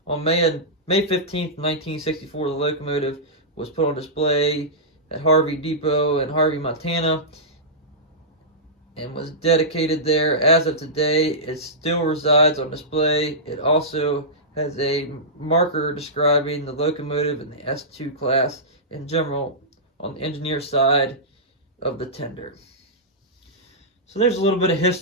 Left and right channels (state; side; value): normal; both; correlation -0.15